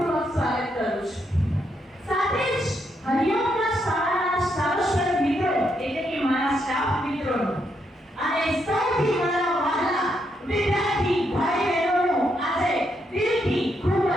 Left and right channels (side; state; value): both; normal; correlation 0.78